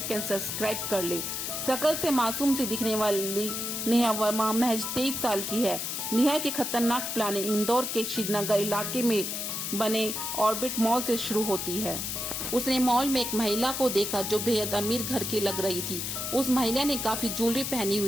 एंड सब्सक्राइब कर ले। शकल से मासूम सी दिखने वाली नेहा वर्मा महज 23 साल की है। नेहा की खतरनाक प्लानिंग इंदौर के श्रीनगर इलाके में बने ऑर्बिट मॉल से शुरू होती है। उसने मॉल में एक महिला को देखा जो बेहद अमीर घर की लग रही थी। उस महिला ने काफी ज्वेलरी पहनी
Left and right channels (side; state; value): left; noise; hiss, 3 dB below the sound